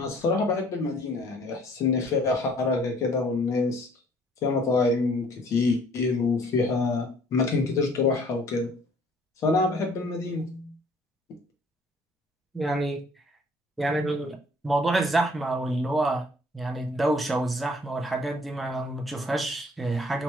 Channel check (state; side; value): normal; both; correlation 0.57